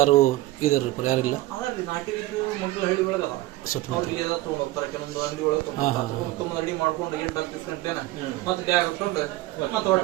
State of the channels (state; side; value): quieter; left; 17.4 dB